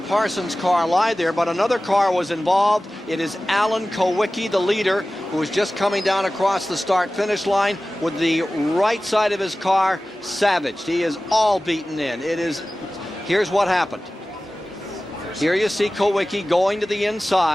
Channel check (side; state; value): both; normal; correlation 0.96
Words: car lie there, but another car was involved. It is Alan Kowicki, the leader, who is just coming down across the start-finish line with the right side of his car savaged. He is all beaten in. Here's what happened. Here you see Kowicki going to the